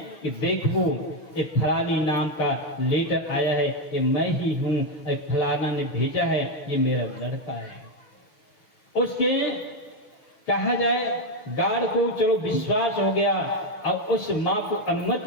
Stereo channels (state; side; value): late; right; 6.3 ms